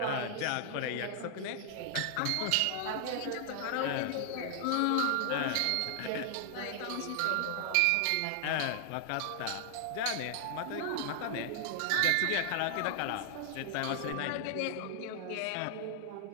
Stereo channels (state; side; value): different; both; correlation 0.00